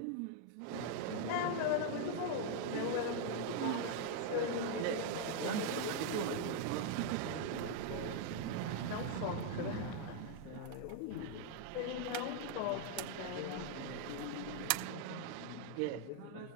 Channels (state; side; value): different; both; correlation 0.00